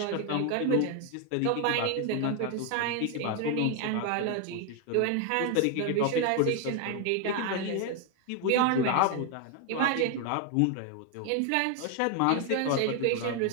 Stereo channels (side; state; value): both; different; correlation 0.01